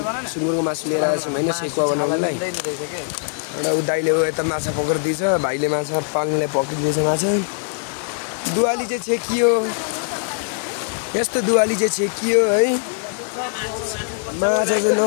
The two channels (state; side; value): silent; right; digital silence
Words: मासु लिएर आएको छौँ होइन सेकुवा बनाउनुलाई। एउटा ऊ दाइले यता माछा पक्रिदिएछ, भाइले माछा पाल्नुलाई पक्रिदिएछ माछा। दुवाली चाहिँ छेकियो, यस्तो दुवाली चाहिँ छेकियो है। माछा चाहिँ